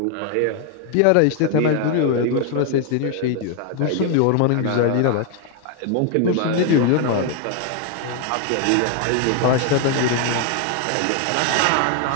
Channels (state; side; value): different; both; correlation 0.00